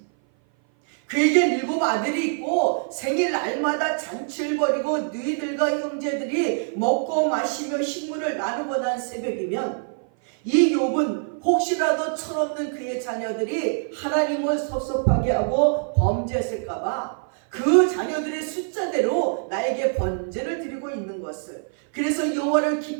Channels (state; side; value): silent; left; 57 dB below the other